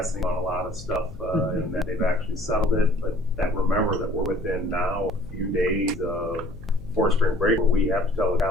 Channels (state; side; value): noise; left; hum, 16 dB below the sound